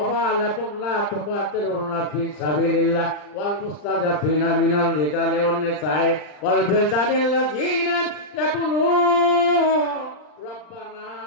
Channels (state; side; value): late; right; 40 ms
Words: লা তুকাতিলুনা ফি সাবিলিল্লাহ ওয়াল মুস্তাজাফিনা মিনাল রিজালি ওয়ান নিসাই ওয়াল বিলদানিল্লাযিনা ইয়াকুলুন রব্বানা